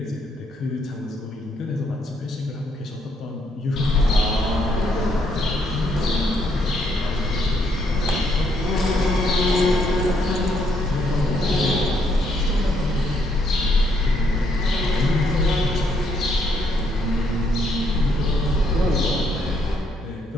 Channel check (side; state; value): both; normal; correlation 0.72